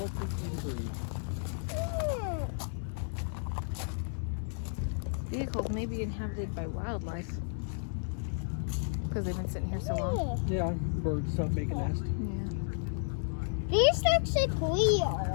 in injury. Vehicles may be inhabited by wildlife because they've been sitting here so long. Yeah, birds stop making nests. Yeah. These looks like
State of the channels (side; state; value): right; silent; digital silence